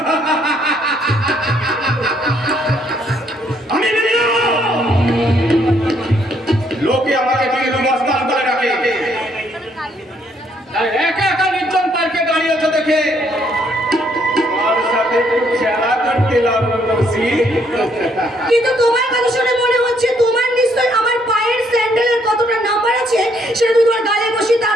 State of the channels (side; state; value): both; normal; correlation 0.69